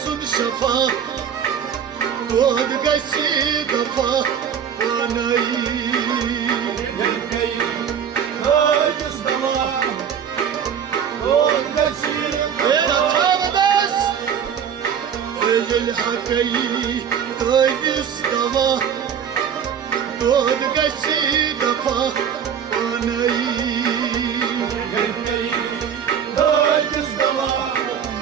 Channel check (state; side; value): quieter; left; 8.0 dB